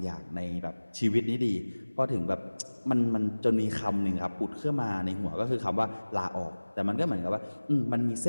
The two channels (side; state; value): both; inverted; correlation -1.00